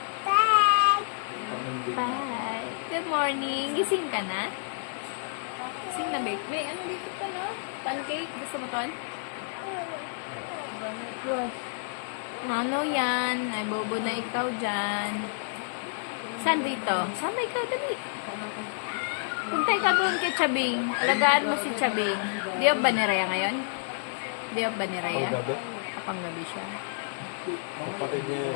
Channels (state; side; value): silent; right; digital silence